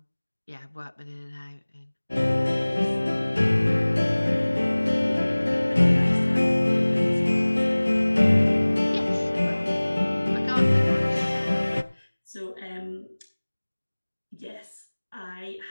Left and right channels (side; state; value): both; inverted; correlation -1.00